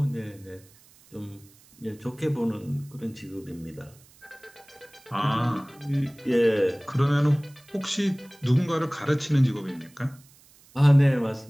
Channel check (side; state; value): right; noise; hiss, 27 dB below the sound